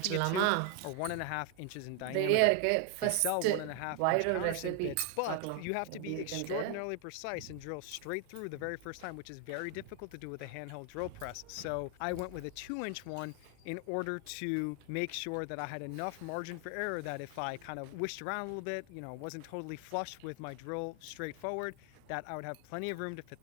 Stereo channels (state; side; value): different; both; correlation 0.00